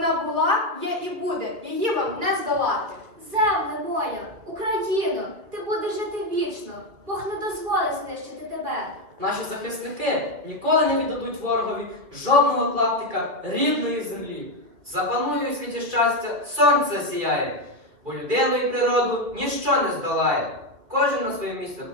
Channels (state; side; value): late; left; 2.8 ms